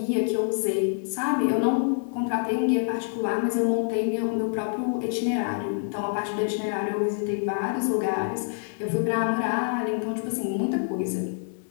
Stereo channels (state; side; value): silent; right; digital silence